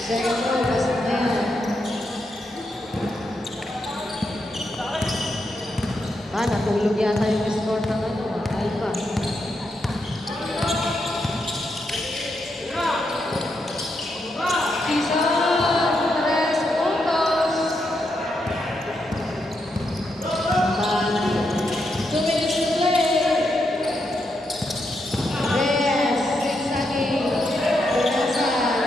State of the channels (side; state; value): both; normal; correlation 0.82